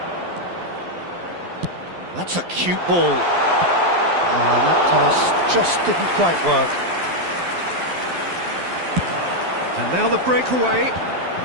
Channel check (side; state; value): left; late; 12 ms